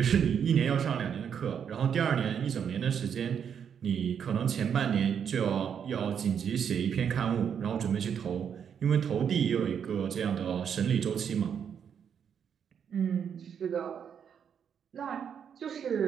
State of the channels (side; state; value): left; quieter; 7.8 dB